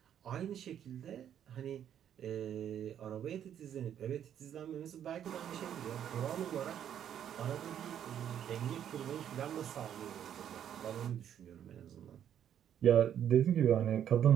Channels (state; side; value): quieter; left; 9.7 dB